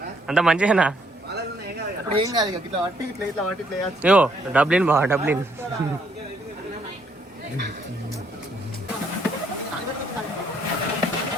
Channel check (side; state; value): both; normal; correlation 0.69